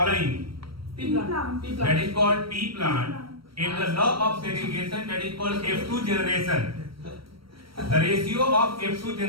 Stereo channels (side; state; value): left; late; 0.75 ms